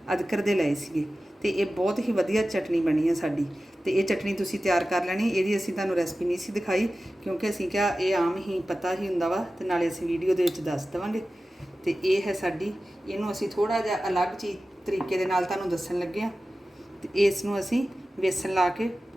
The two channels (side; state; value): both; normal; correlation 0.95